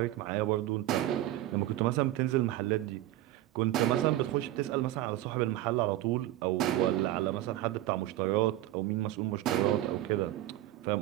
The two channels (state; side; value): quieter; left; 14.8 dB